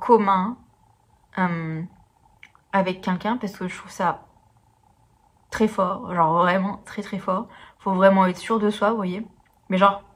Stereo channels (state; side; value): identical; both; correlation 1.00